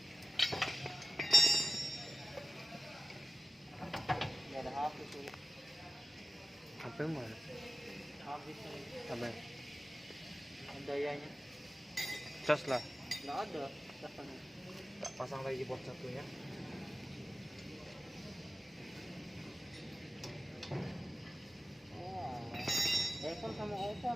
Ini ada habis ini. Apa yang mana? Habis ini. Apa? Dayanya Cas lah. nggak ada. Kita pasang lagi board satunya. Oh, iPhone sama Oppo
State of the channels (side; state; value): both; normal; correlation 0.96